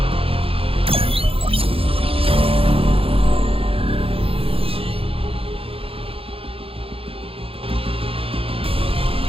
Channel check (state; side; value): late; left; 0.27 ms